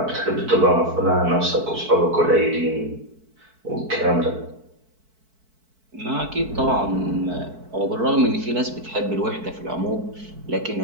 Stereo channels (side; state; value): left; late; 4.5 ms